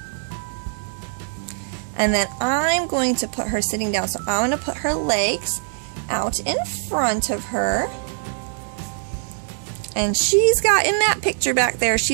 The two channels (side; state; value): left; silent; digital silence